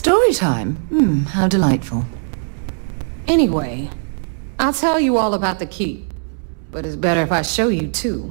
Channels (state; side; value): silent; left; 66 dB below the other